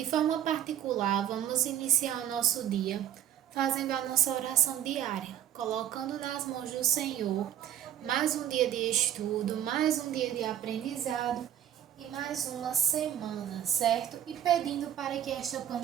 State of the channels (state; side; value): quieter; left; 10.8 dB